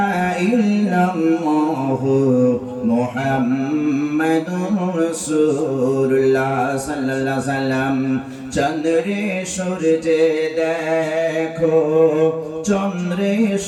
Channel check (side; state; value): both; identical; correlation 1.00